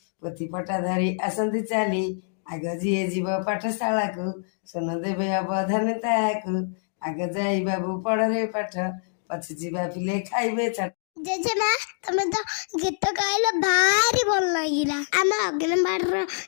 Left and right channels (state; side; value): silent; right; digital silence